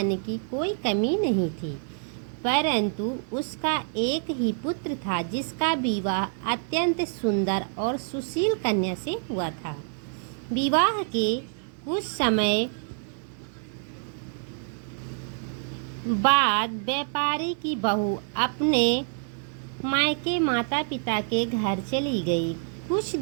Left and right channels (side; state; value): left; silent; 60 dB below the other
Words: की कोई कमी नहीं थी, परंतु उसका एक ही पुत्र था जिसका विवाह अत्यंत सुंदर और सुशील कन्या से हुआ था। विवाह के कुछ समय बाद व्यापारी की बहू अपने मायके माता पिता के घर चली गई। कुछ